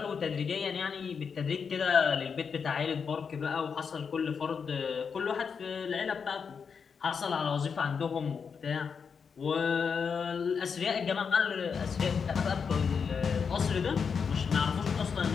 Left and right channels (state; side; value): quieter; right; 6.1 dB